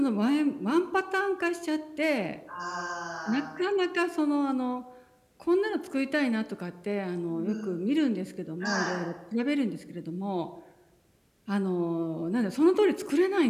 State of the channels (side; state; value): both; identical; correlation 1.00